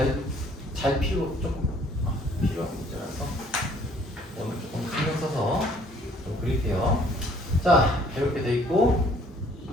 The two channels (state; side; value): normal; both; correlation 0.59